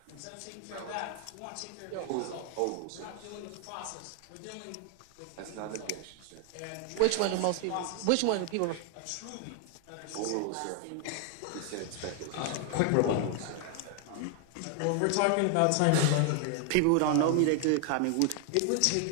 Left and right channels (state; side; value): different; both; correlation 0.00